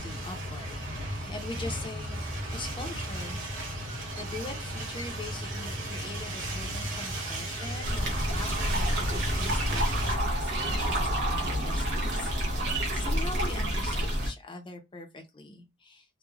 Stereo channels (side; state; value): both; normal; correlation 0.56